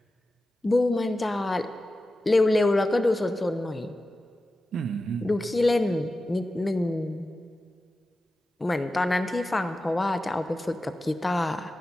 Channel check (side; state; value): both; normal; correlation 0.93